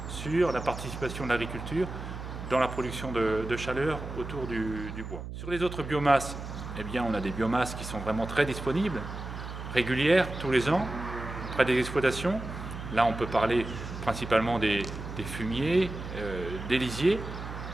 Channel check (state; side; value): noise; right; hum, 9 dB below the sound